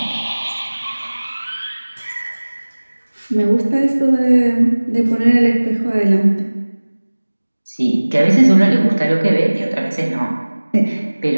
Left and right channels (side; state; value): both; inverted; correlation -1.00